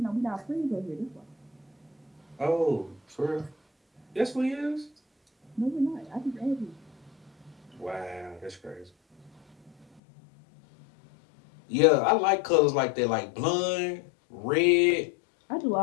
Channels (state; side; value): drops out; right; at 10.0 s